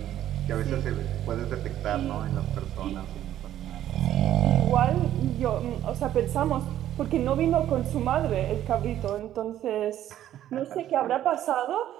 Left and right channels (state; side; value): quieter; left; 12.0 dB